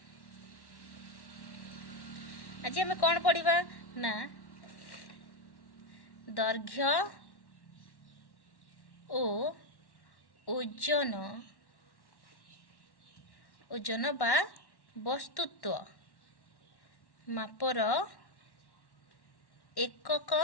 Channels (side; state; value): right; late; 1.1 ms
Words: आज आमे कोन पढ़िबा ना दैर्घ्य ओ ओजन ओजन बा वस्तुत्व मापर एकक